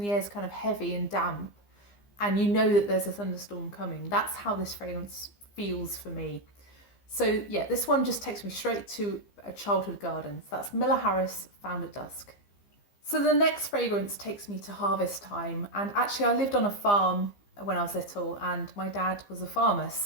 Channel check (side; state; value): right; late; 15 ms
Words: air's kind of heavy and damp, and you know that there's a thunderstorm coming. That's how this fragrance feels for me. So yeah, this one just takes me straight to a childhood garden. So that's Miller Harris, Found at Dusk. So the next fragrance takes me to harvest time. And actually I lived on a farm when I was little, and my dad was a farmer.